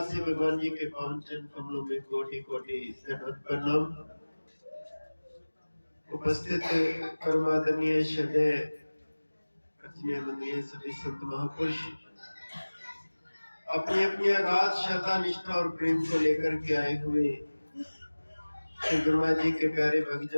भगवान जी के पावन चरण कमलों में कोटि कोटि दंडवत प्रणाम। उपस्थित परमादरणीय श्रद्धेय पूजनीय वंदनीय सभी संत महापुरुष अपनी अपनी अगाध श्रद्धा निष्ठा और प्रेम को लेकर के आए हुए श्री गुरु महाराज जी के प्यारे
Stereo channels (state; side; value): inverted; both; correlation -1.00